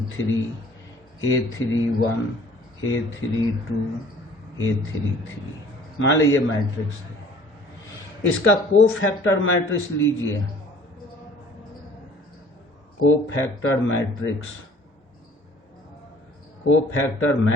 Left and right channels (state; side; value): normal; both; correlation 0.52